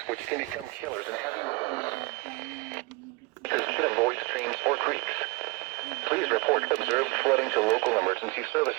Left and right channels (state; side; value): quieter; left; 25.5 dB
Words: which can become killers in heavy rain. To avoid streams or creeks. Please report observed flooding to local emergency